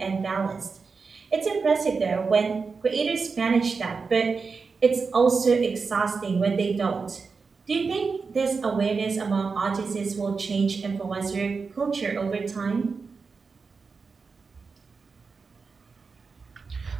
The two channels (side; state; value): left; quieter; 4.8 dB